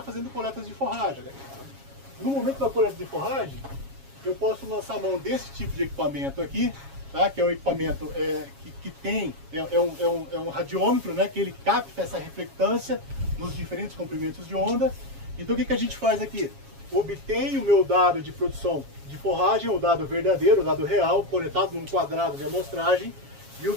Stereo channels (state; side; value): late; left; 7.3 ms